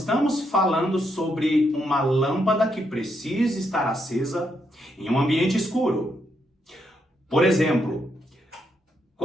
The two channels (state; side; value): normal; both; correlation 0.78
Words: falando sobre uma lâmpada que precisa estar acesa em um ambiente escuro. Por exemplo,